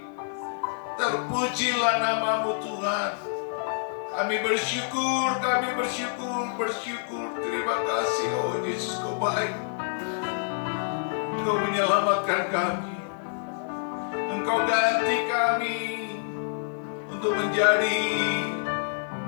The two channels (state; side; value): silent; right; 60 dB below the other